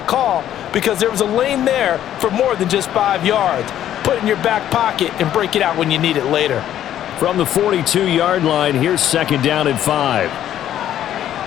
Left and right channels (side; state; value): right; quieter; 11.4 dB